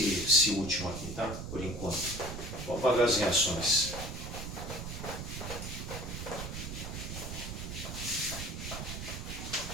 último aqui, tá? Por enquanto. Vou apagar as reações.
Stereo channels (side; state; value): right; noise; rumble, 6 dB below the sound